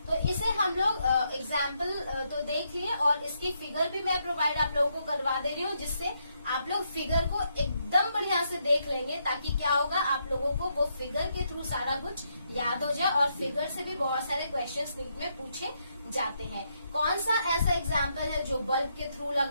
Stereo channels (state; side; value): inverted; both; correlation -0.78